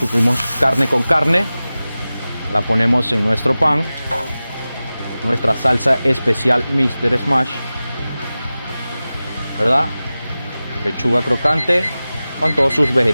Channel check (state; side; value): inverted; both; correlation -0.96